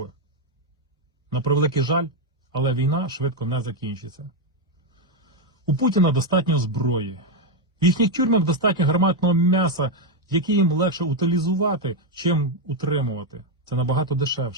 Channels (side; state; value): both; normal; correlation 0.04